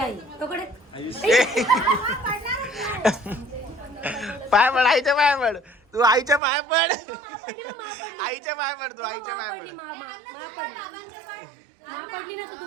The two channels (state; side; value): drops out; left; at 6.4 s